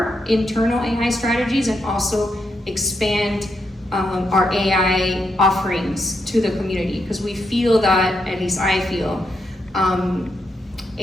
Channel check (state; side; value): normal; both; correlation 0.81